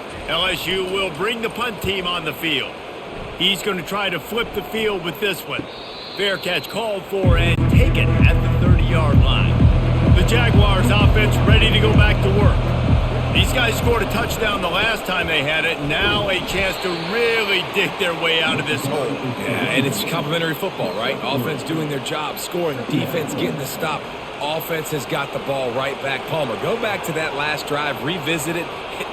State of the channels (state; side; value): identical; both; correlation 1.00